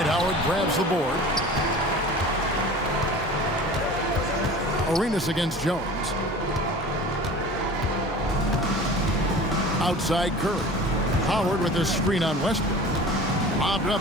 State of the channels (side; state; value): both; normal; correlation 0.40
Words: Howard grabs the board. Arenas against Jones. Outside Curry. Howard with a screen on Westbrook. Lobbed